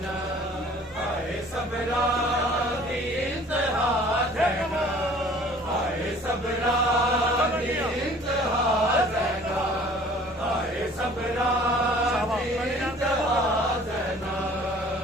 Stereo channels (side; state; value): right; noise; hum, 26 dB below the sound